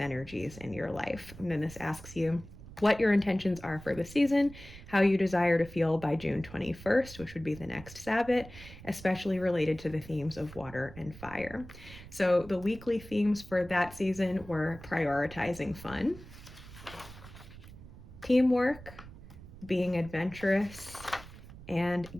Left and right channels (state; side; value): noise; right; rumble, 17 dB below the sound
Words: in your life. And then this asks you what your intentions are for the season, how you desire to feel by June 21st, which would be the next Sabbath, especially related to the themes of water and fire. So the weekly themes for that season were prioritizing fun, teamwork, being adventurous, and